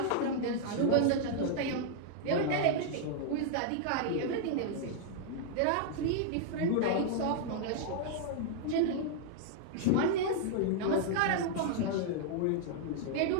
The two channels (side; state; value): both; different; correlation -0.01